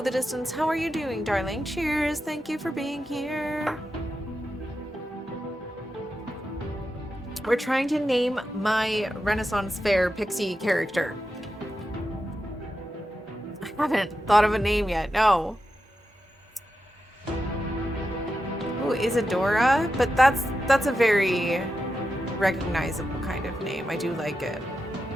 Distance. How are you doing, darling? Cheers. Thank you for being here. We're trying to name my Renaissance Fair pixie character. I haven't thought of a name yet. No. Ooh, Isadora? But that's a very recognizable kind of name. I do like it.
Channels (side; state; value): both; normal; correlation 0.89